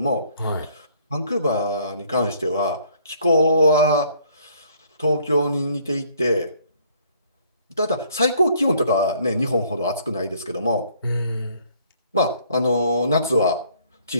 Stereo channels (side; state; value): both; inverted; correlation -0.61